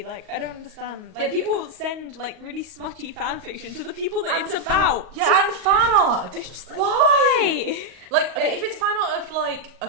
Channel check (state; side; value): late; left; 38 ms